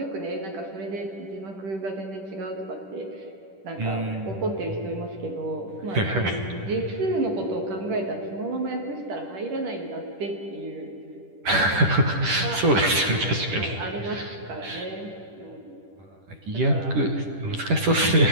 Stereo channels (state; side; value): late; left; 10 ms